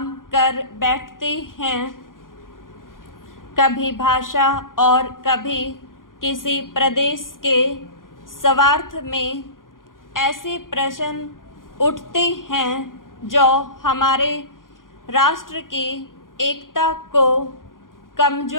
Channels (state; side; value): late; right; 0.90 ms